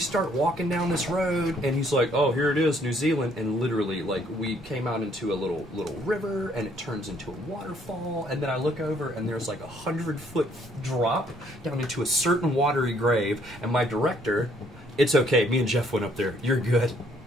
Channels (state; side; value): normal; both; correlation 0.65